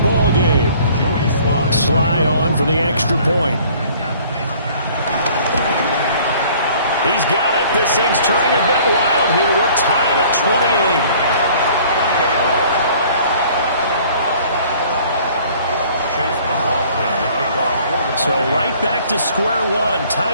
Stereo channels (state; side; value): inverted; both; correlation -0.54